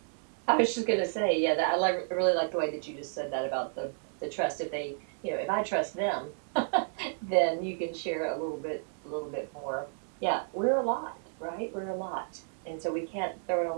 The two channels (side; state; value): left; silent; digital silence